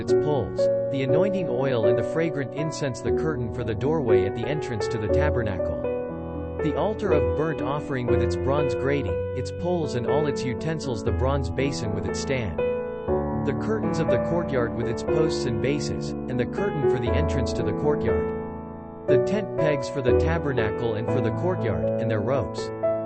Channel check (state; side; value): identical; both; correlation 1.00